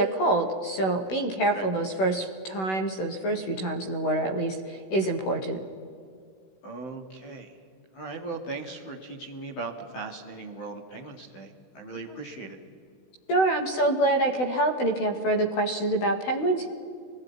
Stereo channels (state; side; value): late; right; 16 ms